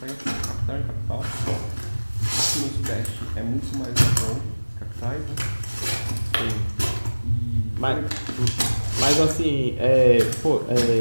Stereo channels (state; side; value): inverted; both; correlation -1.00